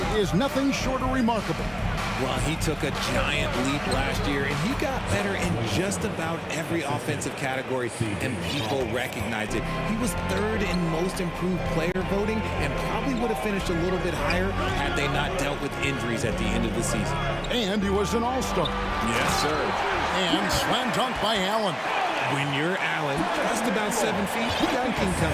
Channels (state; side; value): identical; both; correlation 1.00